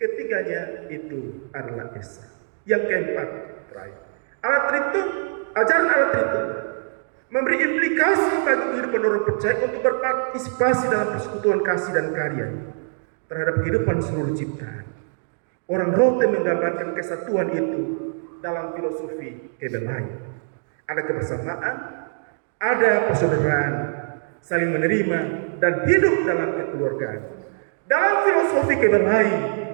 itu adalah Esa. Yang keempat, terakhir, ajaran Allah Tritunggal memberi implikasi bagi kehidupan orang percaya untuk berpartisipasi dalam persekutuan kasih dan karya terhadap kehidupan seluruh ciptaan. Orang Rote menggambarkan kesatuan itu dalam filosofi Kebelai. Ada kebersamaan, ada persaudaraan, saling menerima, dan hidup dalam kekeluargaan. Dalam filosofi Kebelai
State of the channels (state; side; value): silent; left; digital silence